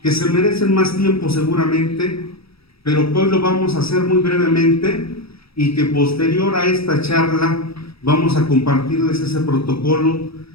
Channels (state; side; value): late; right; 0.77 ms